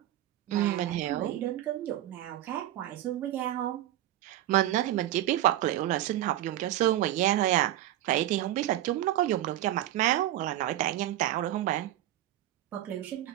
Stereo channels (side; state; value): left; quieter; 13.6 dB